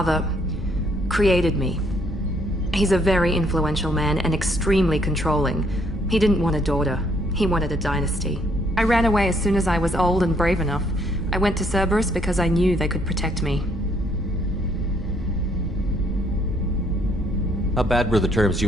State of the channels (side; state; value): both; normal; correlation 0.67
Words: created me. He's a very influential man and extremely controlling. He didn't want a daughter. He wanted a dynasty. I ran away as soon as I was old and brave enough. I went to Cerberus because I knew they could protect me. How bad were the terms